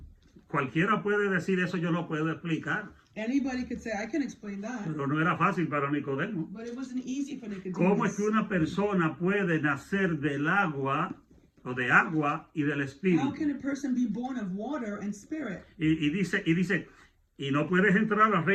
cualquiera puede decir eso, yo lo puedo explicar, Anybody could say, I can explain that. pero no era fácil para Nicodemo. But it wasn't easy for ¿Cómo es Nicodemus. que una persona puede nacer del agua o de agua y del How Espíritu? can a person be born of water and spirit? Y dice, y no puedes entrar al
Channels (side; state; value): both; identical; correlation 1.00